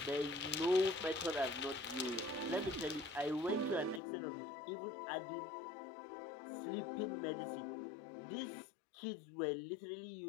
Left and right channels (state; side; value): drops out; right; at 4.0 s